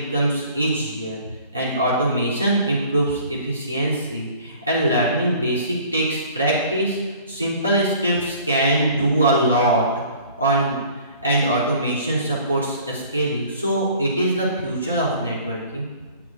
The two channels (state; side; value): inverted; both; correlation -0.50